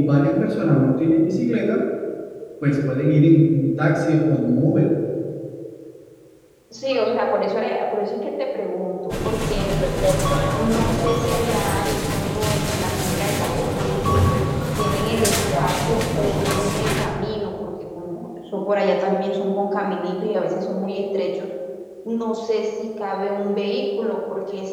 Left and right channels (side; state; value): both; identical; correlation 1.00